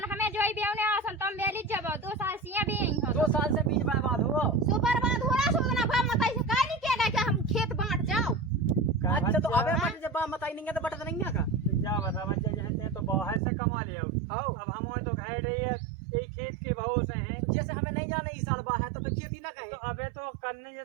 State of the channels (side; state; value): left; drops out; at 13.4 s